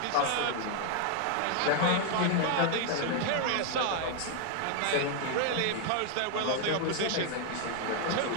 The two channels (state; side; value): different; both; correlation 0.00